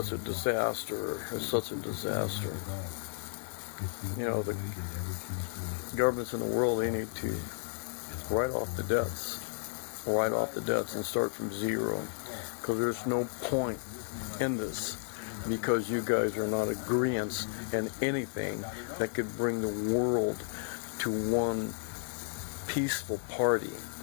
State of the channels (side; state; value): right; silent; 56 dB below the other